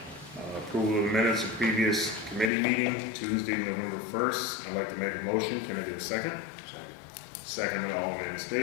Approval of the minutes of previous committee meeting, Tuesday, November 1st. I'd like to make a motion. Can I get a second? Second by Alderman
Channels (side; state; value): right; drops out; at 2.5 s